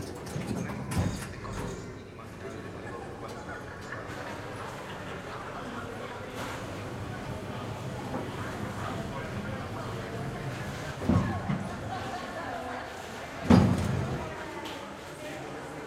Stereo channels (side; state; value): both; identical; correlation 1.00